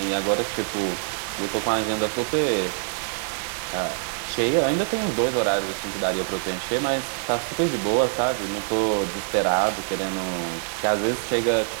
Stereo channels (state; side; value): silent; left; digital silence